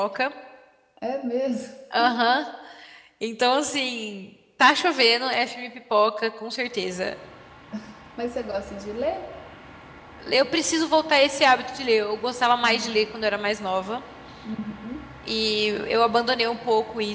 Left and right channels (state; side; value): identical; both; correlation 1.00